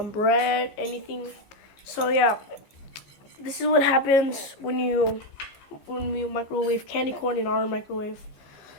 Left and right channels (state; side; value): late; right; 15 ms